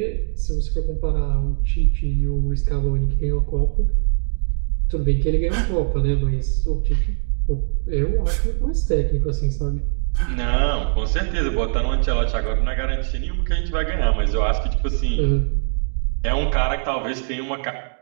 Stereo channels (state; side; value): silent; left; 65 dB below the other